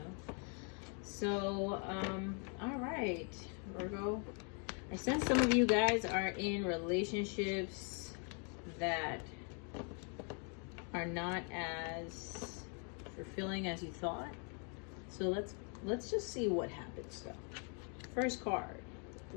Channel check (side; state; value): right; quieter; 39.2 dB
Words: So, alright, Virgo. I sense some of you guys are in relationships that are not as fulfilling as you thought. So let's just see what happens though. First card,